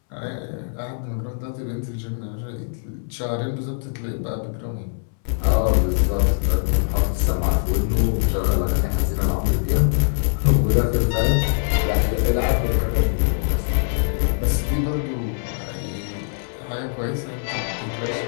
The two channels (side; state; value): right; silent; 64 dB below the other